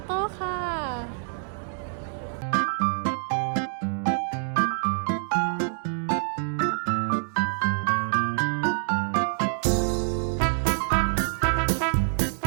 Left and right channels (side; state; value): left; silent; digital silence